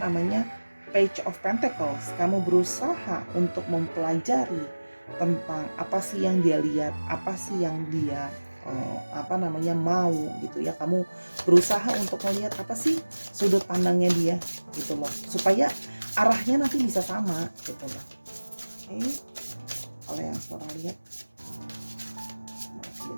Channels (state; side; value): inverted; both; correlation -1.00